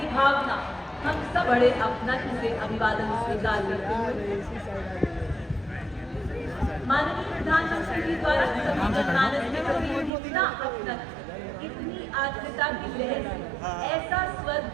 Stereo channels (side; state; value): left; drops out; at 10.1 s